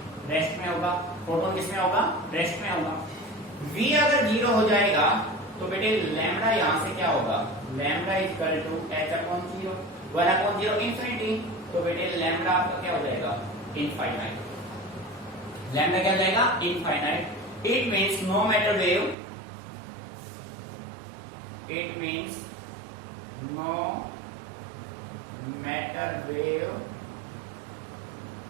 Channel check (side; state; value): left; drops out; at 19.2 s